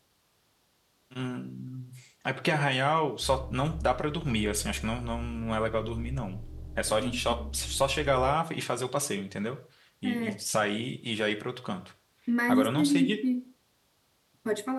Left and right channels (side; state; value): both; identical; correlation 1.00